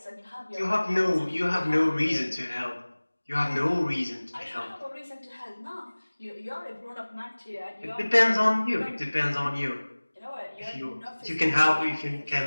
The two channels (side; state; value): both; inverted; correlation -1.00